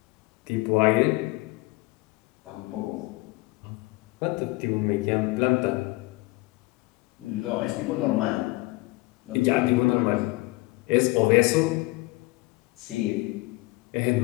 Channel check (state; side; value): quieter; right; 22.3 dB